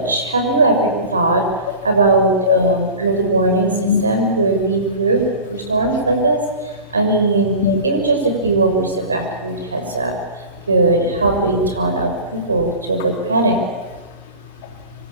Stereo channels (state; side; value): inverted; both; correlation -0.36